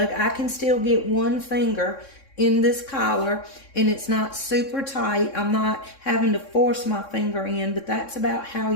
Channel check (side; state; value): right; late; 3.6 ms